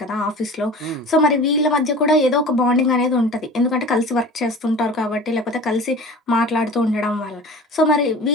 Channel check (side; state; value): both; normal; correlation 0.39